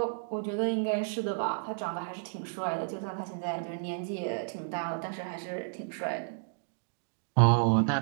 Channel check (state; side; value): silent; left; digital silence